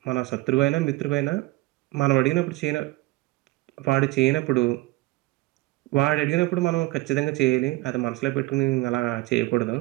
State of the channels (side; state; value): left; quieter; 19.8 dB